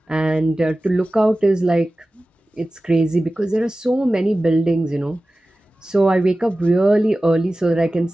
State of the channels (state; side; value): normal; both; correlation 0.96